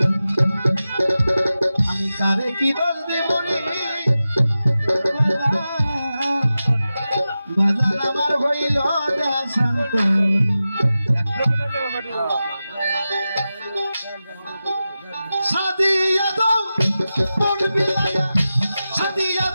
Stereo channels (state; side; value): inverted; both; correlation -0.93